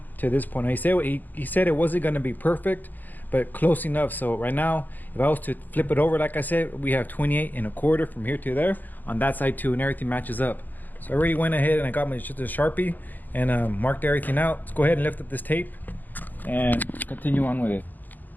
to this point. Now, he said it wasn't going to be perfect, but close enough. So right now, if I was to flip it over, like I said, we have 28.25 from here to there on that side too, and everything matches up. So I already went ahead and I got my Sharpie and marked everything out. Let's go ahead and lift up this tape and continue on with it.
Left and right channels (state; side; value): late; right; 0.086 ms